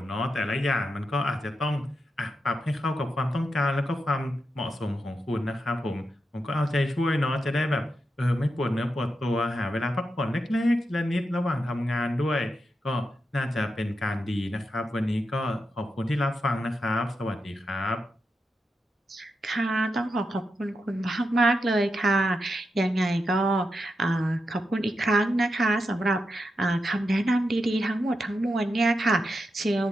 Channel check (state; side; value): normal; both; correlation 0.87